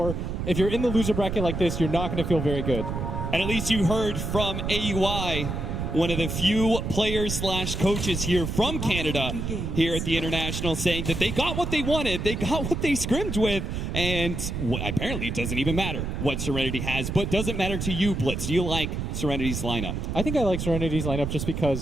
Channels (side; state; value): right; noise; rumble, 3 dB below the sound